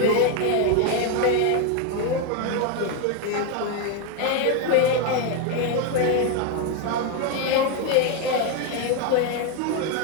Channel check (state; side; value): different; both; correlation 0.01